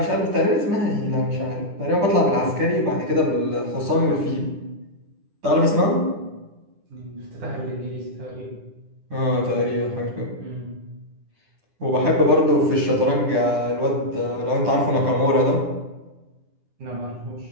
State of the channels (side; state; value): left; late; 9.9 ms